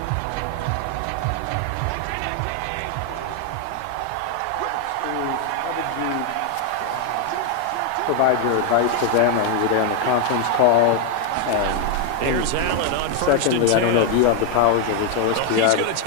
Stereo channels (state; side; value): different; both; correlation 0.00